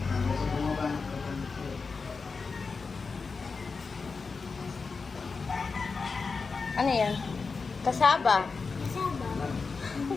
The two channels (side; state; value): right; quieter; 4.6 dB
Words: Hanggang sa bumaba ng kaganito. Ano yan? Kasaba. Kasama.